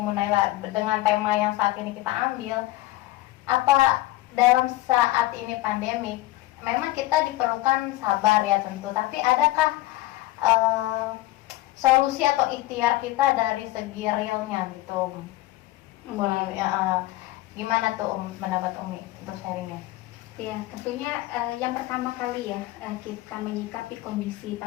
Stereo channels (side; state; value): right; quieter; 17.6 dB